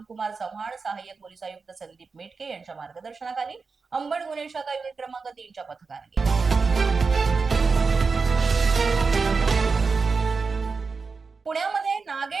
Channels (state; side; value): quieter; left; 4.6 dB